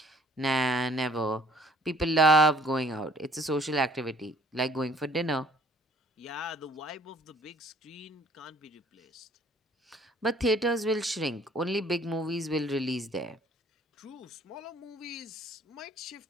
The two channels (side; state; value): both; normal; correlation 0.57